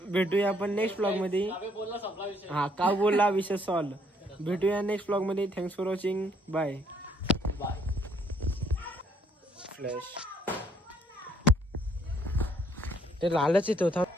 भेटूया आपण नेक्स्ट ब्लॉग मध्ये. हा का बोलला विषय सॉल्व. भेटूया नेक्स्ट ब्लॉग मध्ये. Thanks for watching. Bye. Flash ते लालच येत होता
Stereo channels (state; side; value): normal; both; correlation 0.67